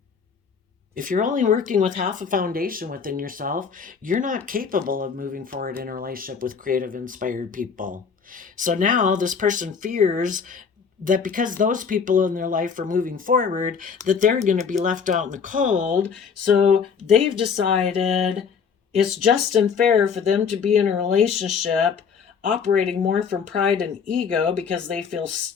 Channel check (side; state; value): right; quieter; 6.2 dB